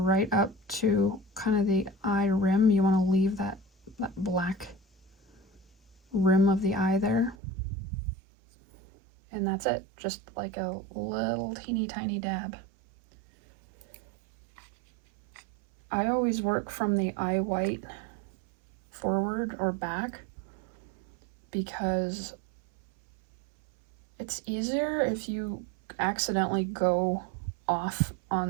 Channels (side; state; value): left; drops out; at 7.4 s